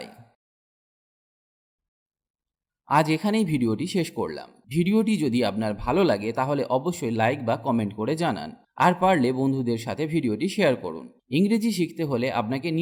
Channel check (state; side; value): identical; both; correlation 1.00